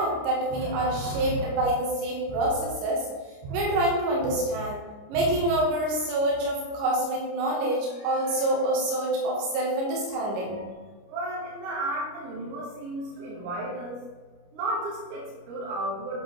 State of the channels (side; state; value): left; late; 29 ms